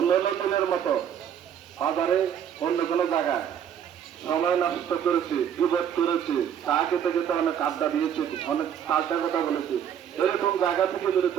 দিনের মতো বাজারে অন্য কোনো জায়গায় সময় নষ্ট করেছি, বিপদ করেছি, চা খেতে খেতে অনেক আড্ডা দিয়েছি, অনেক পাল্টা কথা বলেছি, এরকম জায়গা থেকে দূরে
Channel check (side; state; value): left; quieter; 9.0 dB